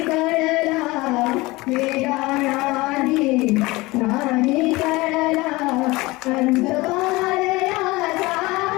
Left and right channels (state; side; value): quieter; right; 21.7 dB